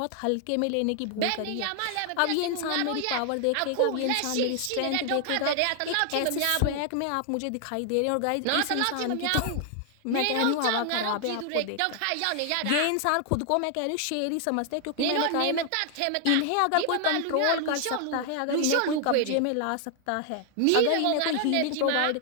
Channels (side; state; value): both; different; correlation 0.00